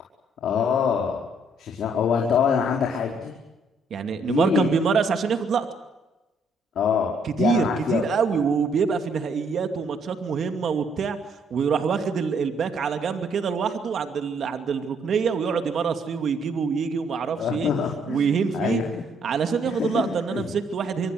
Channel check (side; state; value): both; normal; correlation 0.68